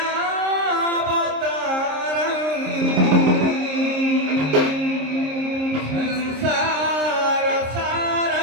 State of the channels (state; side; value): late; left; 26 ms